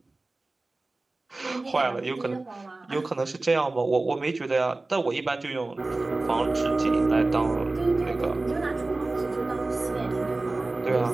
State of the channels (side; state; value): left; quieter; 3.2 dB